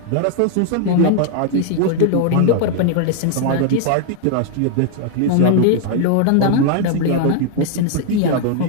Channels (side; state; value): both; different; correlation 0.00